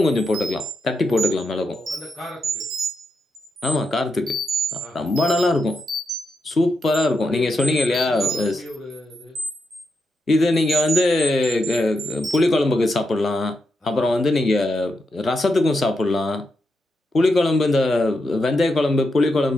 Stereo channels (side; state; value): both; normal; correlation 0.85